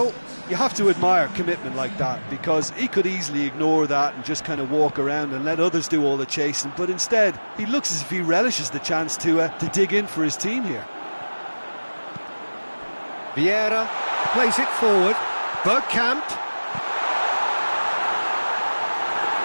You have to admire commitment like that, because he could easily ignore that and just kind of walk around and let others do all the chasing, but instead he looks as if he relishes the chance to dig in for his team here. Vieira plays it forward. Bergkamp.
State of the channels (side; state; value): both; inverted; correlation -1.00